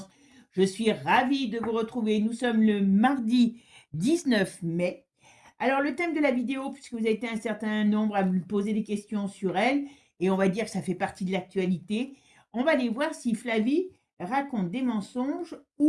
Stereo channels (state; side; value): identical; both; correlation 1.00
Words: Je suis ravie de vous retrouver. Nous sommes le mardi 19 mai. Alors le thème de la vidéo, puisque vous avez été un certain nombre à me poser des questions sur elle, et on va dire que ça fait partie de l'actualité, on va aller voir si Flavie raconte des mensonges